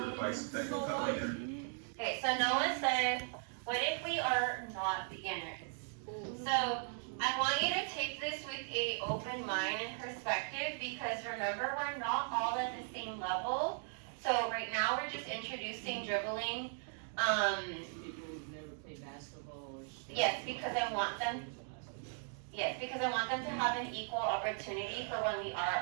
device that can cut my energy. okay, so Noah said, what if we are not beginners? So I want you to take this with a open mind and perspective because remember, we're not all at the same level. So right now we're just introducing dribbling. People who've never played basketball or stuff. Yes, because I want them to have an equal opportunity for when we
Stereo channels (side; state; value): left; silent; 52 dB below the other